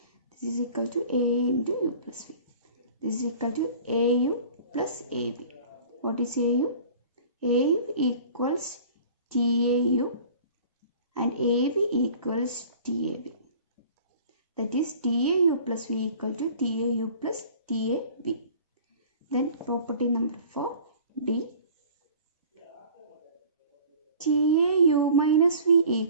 This is equal to A into U plus V. This is equal to AU plus AV. What is AU? AU equals TAU and AV equals TAV. That is TAU plus V equal to TAU plus TAV. Then property number 4, D. TAU minus V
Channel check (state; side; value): inverted; both; correlation -0.46